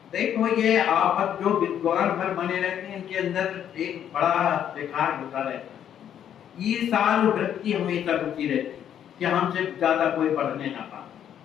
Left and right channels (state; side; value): quieter; right; 9.7 dB